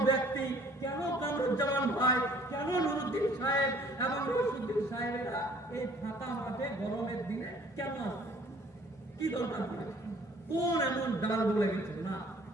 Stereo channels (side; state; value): both; normal; correlation 0.56